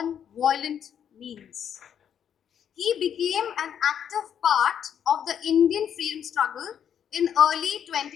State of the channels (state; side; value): quieter; right; 8.8 dB